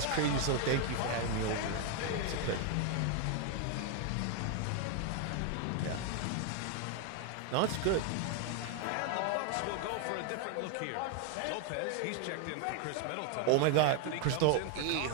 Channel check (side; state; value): both; different; correlation 0.01